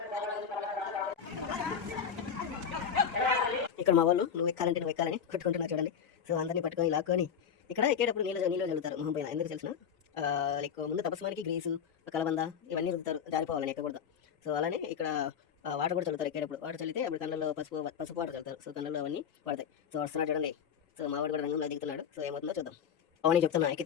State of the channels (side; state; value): right; quieter; 7.6 dB